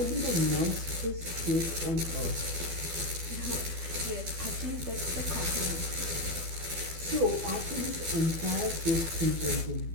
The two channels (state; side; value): late; left; 12 ms